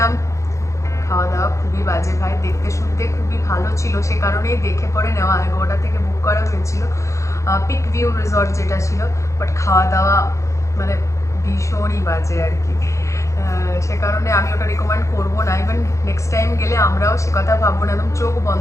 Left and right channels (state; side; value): late; right; 0.15 ms